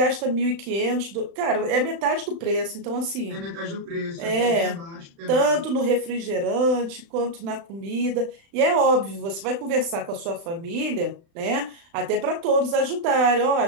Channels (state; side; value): late; left; 35 ms